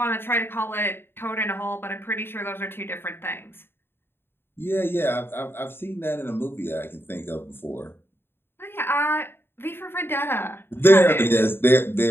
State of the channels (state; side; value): late; right; 0.11 ms